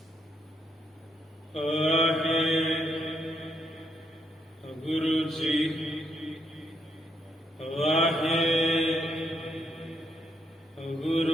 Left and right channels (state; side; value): normal; both; correlation 0.76